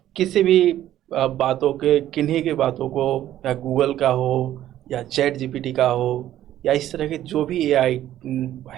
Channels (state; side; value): quieter; left; 12.6 dB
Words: किसी भी बातों के, किन्हीं की बातों को, या गूगल का हो या चैट जीपीटी का हो या इस तरह के जो भी एआई